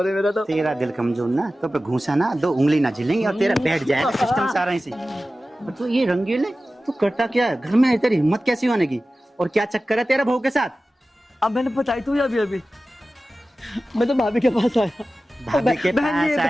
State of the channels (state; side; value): normal; both; correlation 0.95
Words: है मेरा। तो तेरा दिल कमजोर ना, तो पे घूसा ना 2 उंगली ना झिलेंगी और तेरा बैठ जाएगा सिस्टम सारा इसी। तो ये रंगीले तू करता क्या है घर में? तेरी हिम्मत कैसी होने की, और क्या चक्कर है तेरा बहू के साथ? अब मैंने बताई तू अभी अभी, मैं तो भाभी के पास आया। भाभी के पास